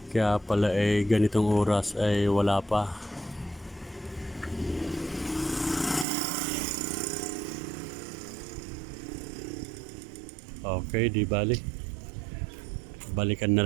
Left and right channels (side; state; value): left; drops out; at 6.1 s